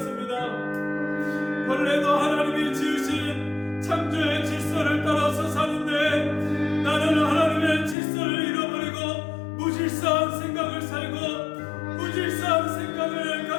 벌레도 하나님이 지으신 창조의 질서를 따라서 사는데 나는 하나님의 질서를 잃어버리고 무질서한 생각을 살고 무질서한 생각을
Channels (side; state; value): right; drops out; at 8.0 s